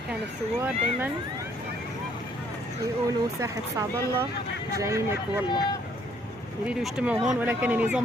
كان الثوار دايما يقولوا ساحة سعد الله جايينك والله، يريدوا يجتمعوا هون، ولكن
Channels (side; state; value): both; normal; correlation 0.65